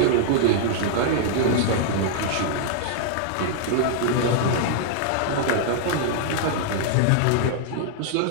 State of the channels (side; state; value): both; different; correlation -0.01